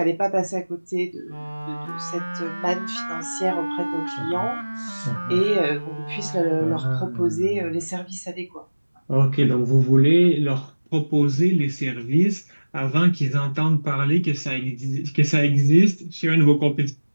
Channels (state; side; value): inverted; both; correlation -1.00